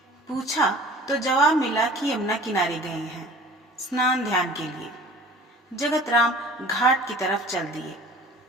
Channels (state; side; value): normal; both; correlation 0.46